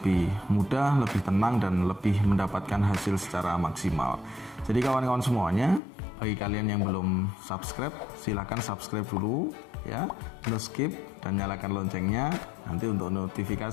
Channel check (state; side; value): drops out; right; at 5.8 s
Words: mudah, lebih tenang, dan lebih mendapatkan hasil secara maksimal. Jadi kawan-kawan semuanya, bagi kalian yang belum subscribe, silahkan subscribe dulu ya, no skip, dan nyalakan loncengnya nanti untuk